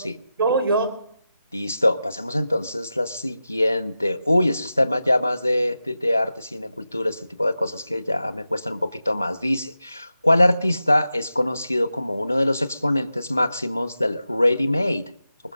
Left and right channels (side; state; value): both; inverted; correlation -0.91